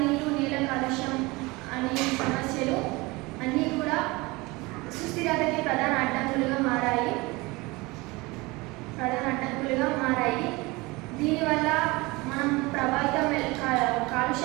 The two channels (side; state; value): left; quieter; 23.3 dB